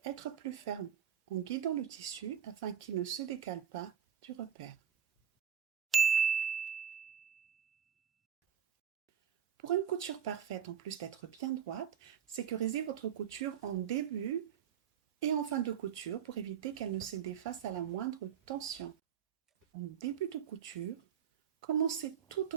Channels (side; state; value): left; quieter; 8.4 dB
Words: être plus ferme en guidant le tissu afin qu'il ne se décale pas du repère. Pour une couture parfaite, en plus d'être bien droite, sécurisez votre couture en début et en fin de couture pour éviter qu'elle ne se défasse à la moindre tension. En début de couture, commencez tout